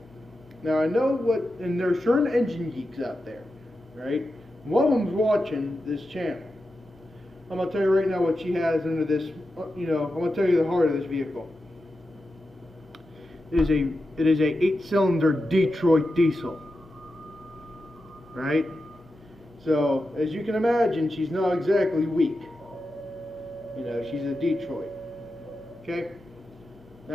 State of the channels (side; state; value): both; normal; correlation 0.90